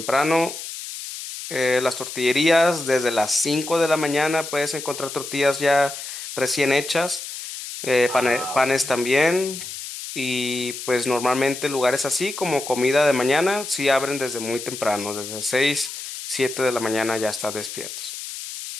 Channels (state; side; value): noise; left; hiss, 9 dB below the sound